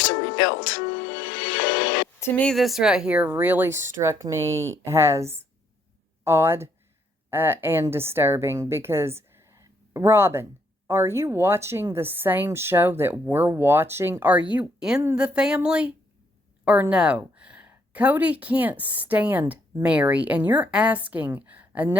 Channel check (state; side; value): normal; both; correlation 0.70